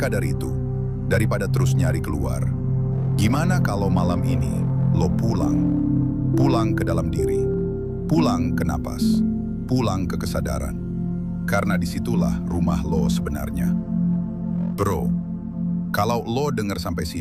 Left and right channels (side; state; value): both; identical; correlation 1.00